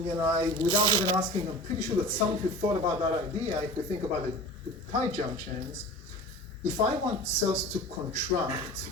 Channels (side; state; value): both; normal; correlation 0.37